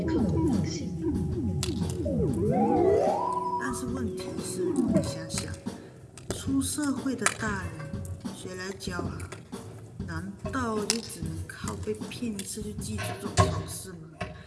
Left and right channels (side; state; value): both; identical; correlation 1.00